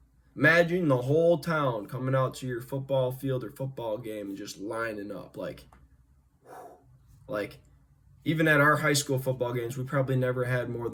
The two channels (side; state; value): both; identical; correlation 1.00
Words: Imagine the whole town coming out to your football field or football game and just lining up. Like, even at our high school football games, we probably never had more